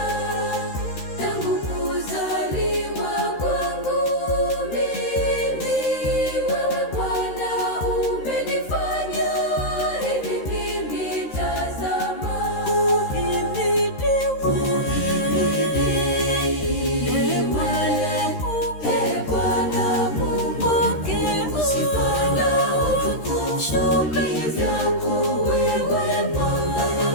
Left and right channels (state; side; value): late; right; 13 ms